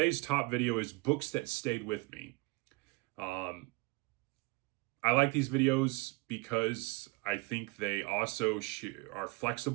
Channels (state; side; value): quieter; left; 25.7 dB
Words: top video is books that stayed with me. I like these videos because I think they also are